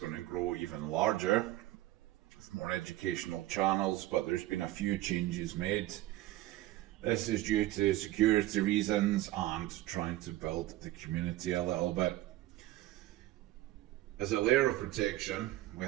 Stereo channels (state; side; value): quieter; left; 16.0 dB